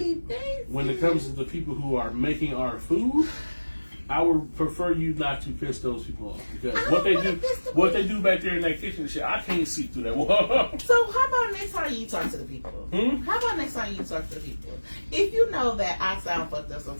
it comes to the people who are making our food, I would prefer you not to piss those people off because what they do back there in that kitchen and shit, I can't see through that wall. So how about next time you talk to the people? How about next time you talk to the people? If you know that I sound fucked up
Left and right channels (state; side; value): inverted; both; correlation -1.00